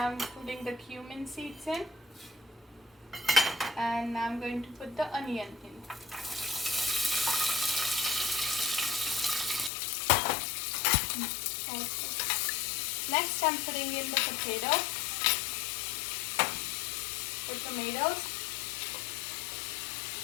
I'm putting the cumin seeds in, and now I'm going to put the onion in. Next I'm putting in the tomatoes,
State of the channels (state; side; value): drops out; right; at 9.7 s